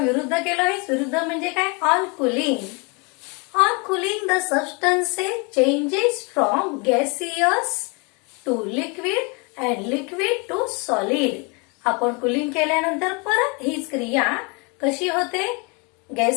विरुद्ध केलं, हे विरुद्ध म्हणजे काय? On cooling the substances changes from gaseous to liquid and liquid to solid. आपण कूलिंग केल्यानंतर परत हीच क्रिया कशी होते?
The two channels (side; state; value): right; quieter; 31.1 dB